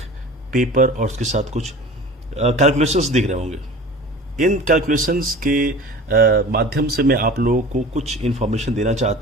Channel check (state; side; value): normal; both; correlation 0.39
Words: पेपर और उसके साथ कुछ कैलकुलेशंस दिख रहे होंगे। इन कैलकुलेशंस के माध्यम से मैं आप लोगों को कुछ इन्फॉर्मेशन देना